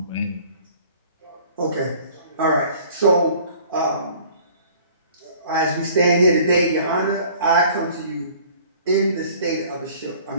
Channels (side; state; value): both; inverted; correlation -0.52